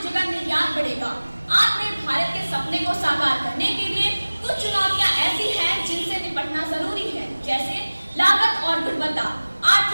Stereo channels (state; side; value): inverted; both; correlation -1.00